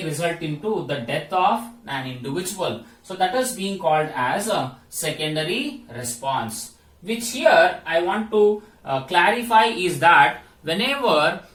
result into the death of an individual. So that is being called as a secondary response, which here I want to clarify is that whenever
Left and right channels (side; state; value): both; identical; correlation 1.00